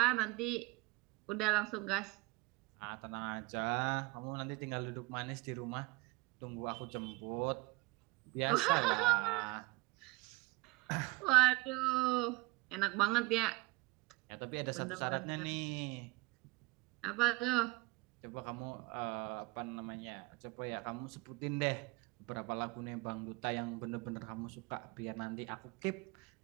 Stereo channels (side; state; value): left; quieter; 24.9 dB